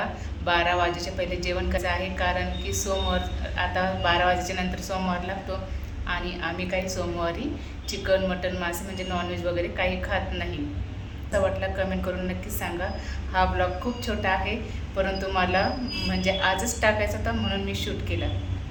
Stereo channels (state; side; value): identical; both; correlation 1.00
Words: 12 वाजेच्या पहिले जेवण करायचं आहे, कारण की सोमवार आता 12 वाजेच्या नंतर सोमवार लागतो आणि आम्ही काही सोमवारी चिकन, मटन, मासे म्हणजे नॉनव्हेज वगैरे काही खात नाही. असं वाटलं कमेंट करून नक्कीच सांगा. हा ब्लॉग खूप छोटा आहे, परंतु मला म्हणजे आजच टाकायचा होता म्हणून मी शूट केला.